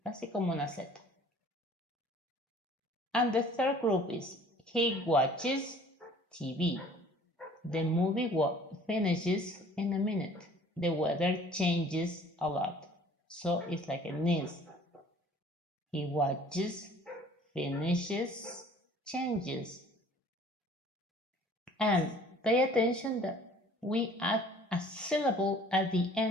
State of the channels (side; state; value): both; normal; correlation 0.52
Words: casi como una Z. And the third group is he watches TV. The movie finishes in a minute. The weather changes a lot. So it's like a NIS. He watches, finishes, changes. And pay attention that we add a syllable at the